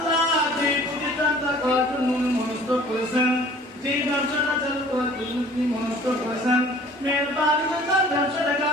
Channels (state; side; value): normal; both; correlation 0.50